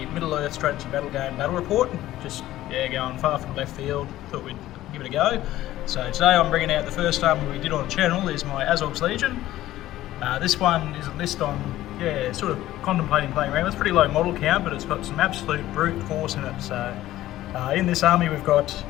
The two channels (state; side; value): quieter; right; 14.8 dB